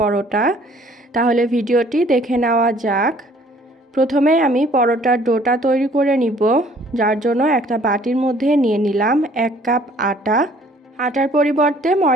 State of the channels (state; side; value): normal; both; correlation 0.57